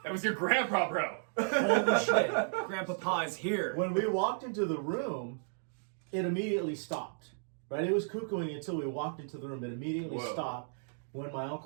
That was your grandpa, bro. Holy shit. Grandpa Pa is here. When we walked into the room, it immediately stopped. Right? It was cuckooing until we walked into the room. It immediately stopped. When my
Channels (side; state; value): left; silent; digital silence